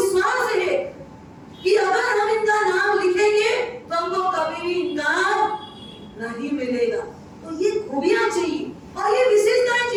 है कि अगर हम इनका नाम लिखेंगे तो हमको कभी भी इनकार नहीं मिलेगा। तो ये खूबियां चाहिए और ये विशेषताएं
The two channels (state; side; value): identical; both; correlation 1.00